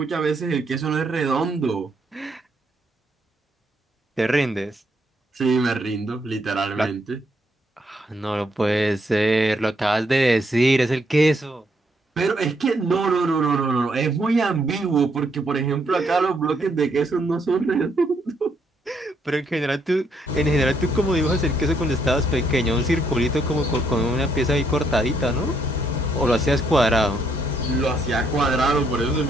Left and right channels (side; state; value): both; normal; correlation 0.73